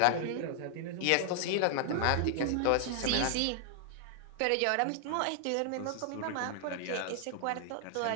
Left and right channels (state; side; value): different; both; correlation 0.00